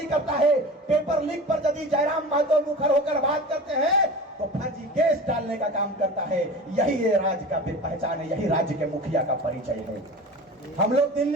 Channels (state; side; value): normal; both; correlation 0.34